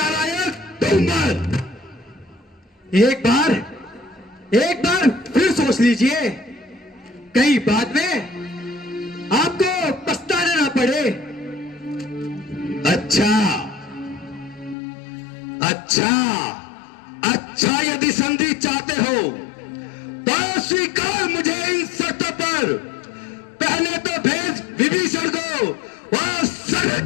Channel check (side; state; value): right; drops out; at 14.8 s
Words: डूब मर। एक बार फिर सोच लीजिए, कहीं बाद में आपको पछताना ना पड़े। अच्छा, यदि संधि चाहते हो तो स्वीकार मुझे इन शर्तों पर। पहले तो भेज विभीषण को और